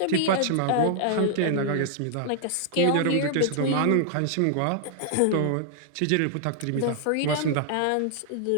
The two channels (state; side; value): different; both; correlation 0.00